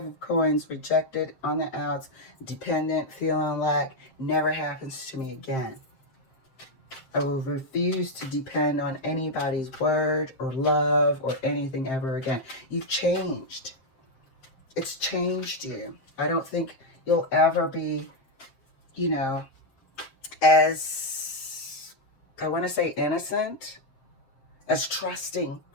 of Coins, rejected, on the outs, dependent, feeling lack, never happens to me again. I will refuse to depend on anybody's word or love or anything ever again. You've changed. It's changed you. I don't think you'll ever be, you know, as, I want to say innocent, as trusting,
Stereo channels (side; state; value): right; late; 7.6 ms